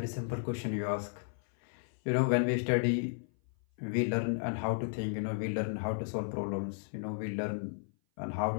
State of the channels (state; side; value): silent; right; 55 dB below the other